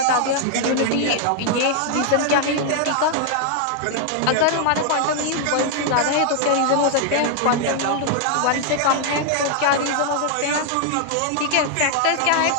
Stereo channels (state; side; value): different; both; correlation 0.00